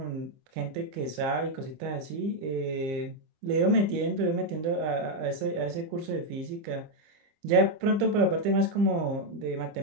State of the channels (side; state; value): left; late; 25 ms